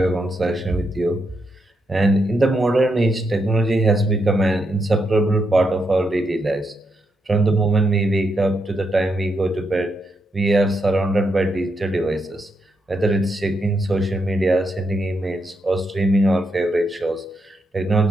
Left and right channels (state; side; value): normal; both; correlation 0.81